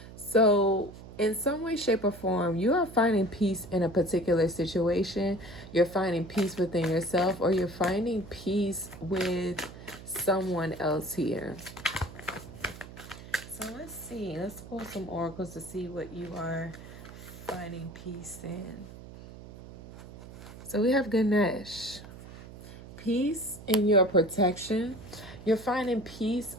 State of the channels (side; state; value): right; noise; hum, 15 dB below the sound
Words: So, in some way, shape, or form, you are finding peace in a particular situation. You're finding peace within yourself, or you're finding peace with someone else here. So, let's see. Let's pull some oracles to see what you are finding peace in. So, we have Ganesh. Peace in your protection. You're finding peace